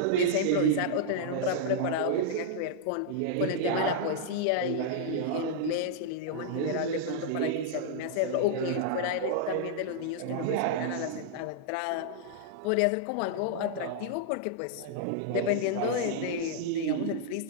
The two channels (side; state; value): both; different; correlation -0.01